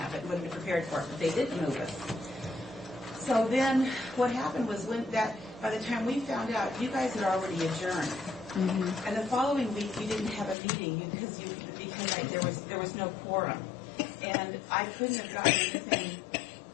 but wouldn't have prepared for it. But they didn't move us. So then, what happened was by the time we found out, you guys had already adjourned. And the following week, we didn't have a meeting because there was no quorum, and I couldn't have gotten anything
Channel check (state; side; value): drops out; right; at 10.6 s